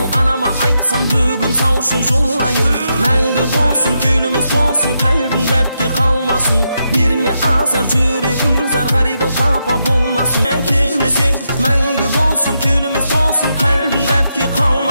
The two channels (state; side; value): inverted; both; correlation -0.83